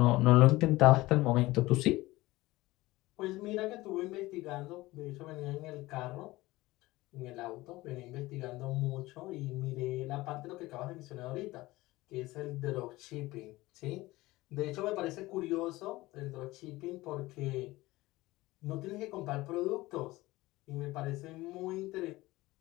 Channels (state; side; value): quieter; right; 19.2 dB